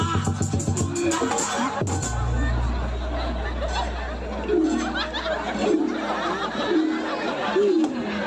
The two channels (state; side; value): identical; both; correlation 1.00